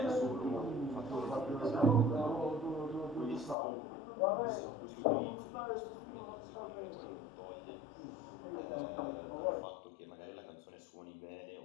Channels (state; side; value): drops out; right; at 3.6 s